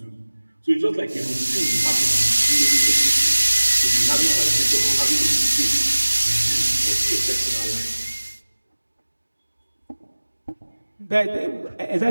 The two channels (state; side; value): inverted; both; correlation -1.00